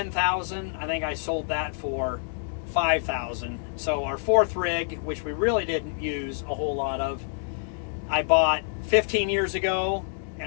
I think I sold that for $5,000. So our 4th rig, which we really didn't use a whole lot of, I bought 15 years ago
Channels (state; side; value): silent; right; digital silence